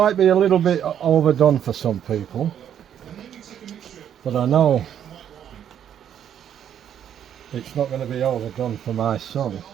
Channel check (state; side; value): quieter; left; 9.6 dB